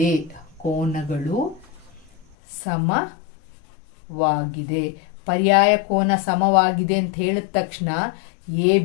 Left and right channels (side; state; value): right; drops out; at 2.2 s